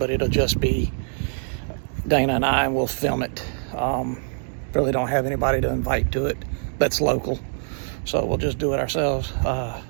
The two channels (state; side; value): silent; left; digital silence